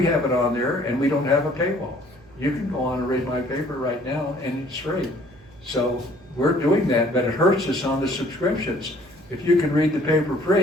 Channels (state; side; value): noise; right; hum, 25 dB below the sound